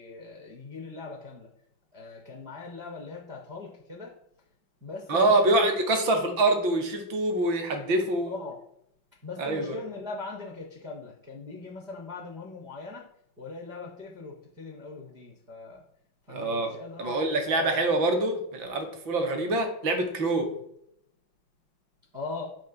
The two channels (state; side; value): late; left; 5.9 ms